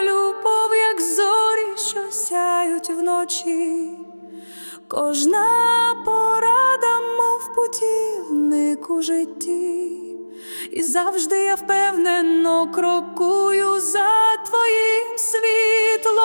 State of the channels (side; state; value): both; inverted; correlation -1.00